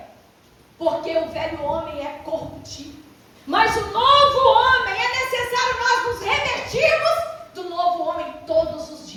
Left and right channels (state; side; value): identical; both; correlation 1.00